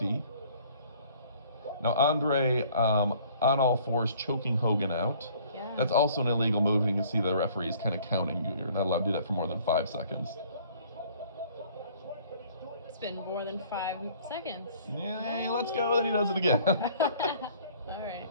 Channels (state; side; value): inverted; both; correlation -0.55